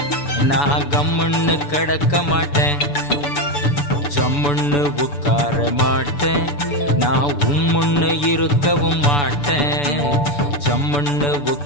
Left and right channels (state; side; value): late; right; 6.9 ms